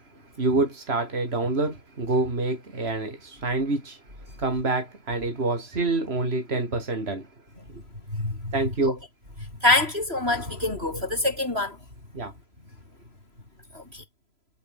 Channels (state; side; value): late; left; 3.0 ms